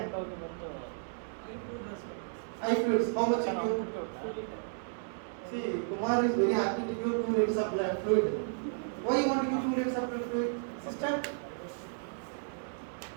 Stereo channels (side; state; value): left; silent; 56 dB below the other